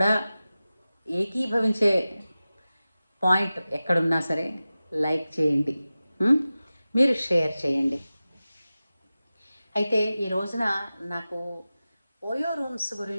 ఏకీభవించే పాయింట్ ఎక్కడున్నా సరే లైక్ చేయండి, మీరు షేర్ చేయండి. అయితే ఈ రోజున నాకు ఓయో రూమ్స్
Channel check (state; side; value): inverted; both; correlation -0.95